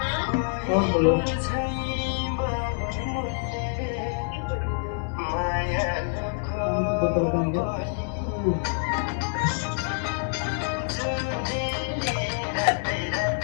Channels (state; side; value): silent; right; 61 dB below the other